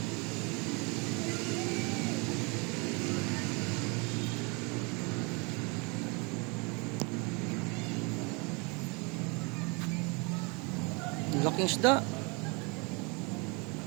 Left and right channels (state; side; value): quieter; left; 30.4 dB